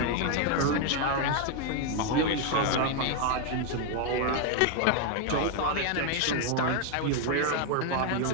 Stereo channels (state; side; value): different; both; correlation 0.01